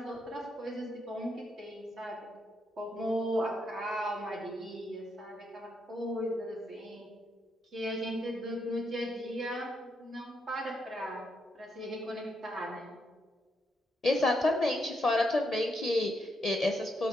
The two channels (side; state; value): both; normal; correlation 0.79